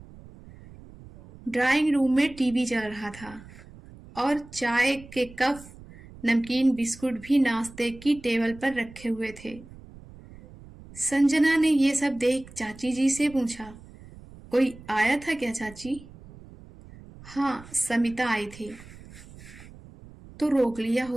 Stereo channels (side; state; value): right; noise; rumble, 19 dB below the sound